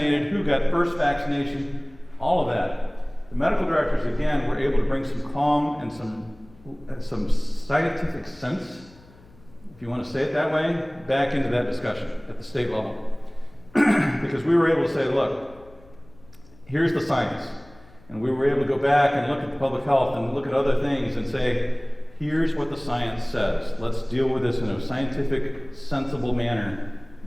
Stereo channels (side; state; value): left; noise; hum, 25 dB below the sound